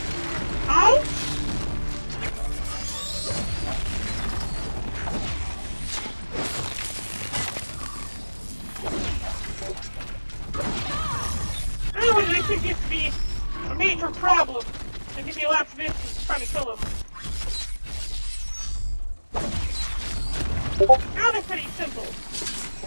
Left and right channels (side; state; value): both; inverted; correlation -1.00